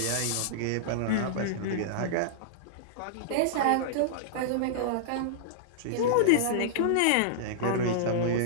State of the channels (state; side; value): different; both; correlation -0.02